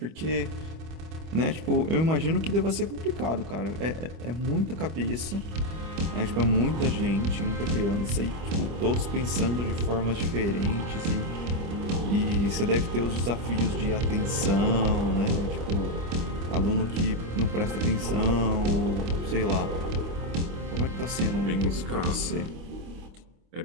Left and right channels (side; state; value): left; late; 25 ms